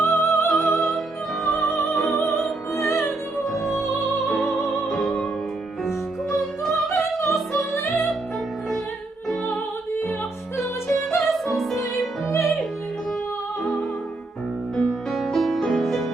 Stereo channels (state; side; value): quieter; left; 3.1 dB